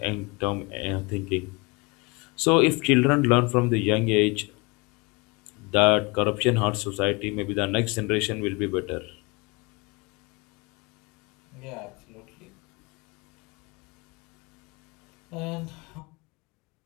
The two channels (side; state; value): right; quieter; 28.0 dB